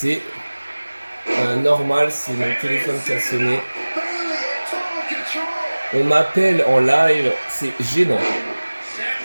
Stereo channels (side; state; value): both; inverted; correlation -1.00